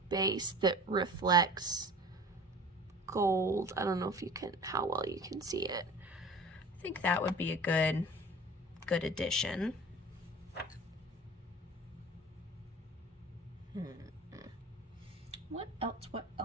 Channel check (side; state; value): both; normal; correlation 0.41